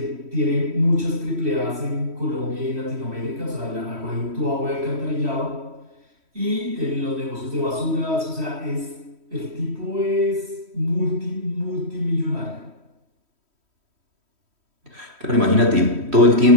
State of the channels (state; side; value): late; left; 3.1 ms